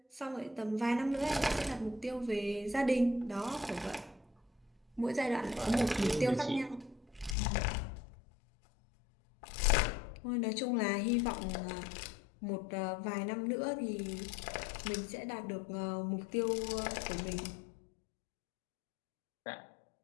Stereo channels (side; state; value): right; drops out; at 7.4 s